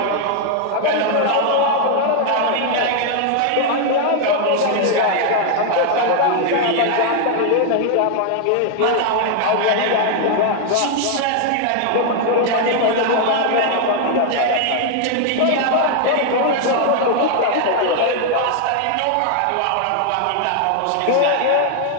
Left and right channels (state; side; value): different; both; correlation 0.00